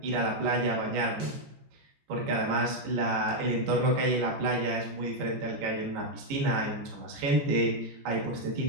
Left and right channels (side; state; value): left; late; 15 ms